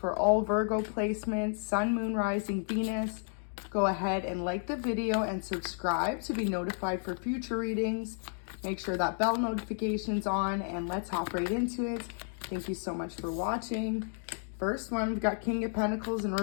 all Virgo placements, Sun, Moon, Rising, Venus. Go ahead and like the video and subscribe to be notified for future readings. Make sure that bell notification's on, and let's hop right into it. Thank you so much for watching. First one, we've got King of Pentacles in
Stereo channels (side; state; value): right; silent; 56 dB below the other